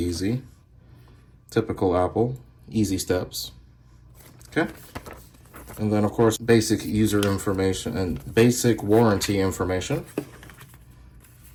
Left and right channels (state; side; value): identical; both; correlation 1.00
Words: Typical Apple, easy steps. Okay. And then of course, basic user information and basic warranty information.